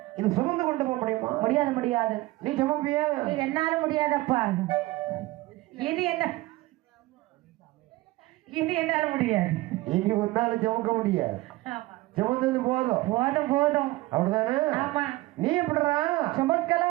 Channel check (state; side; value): quieter; left; 19.5 dB